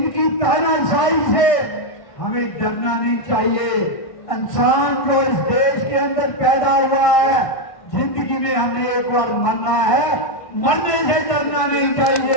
तानाशाही से हमें डरना नहीं चाहिए। इंसान जो इस देश के अंदर पैदा हुआ है, जिंदगी में हमने एक बार मरना है, मरने से डरना नहीं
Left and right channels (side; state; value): right; late; 1.5 ms